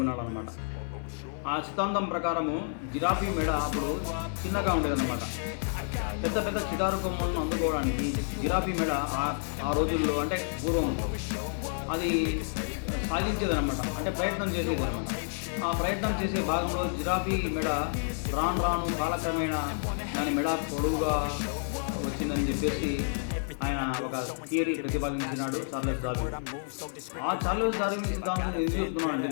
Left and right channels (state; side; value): silent; right; 56 dB below the other